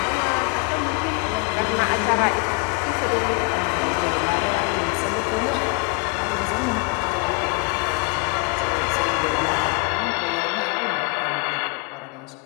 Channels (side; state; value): right; quieter; 32.7 dB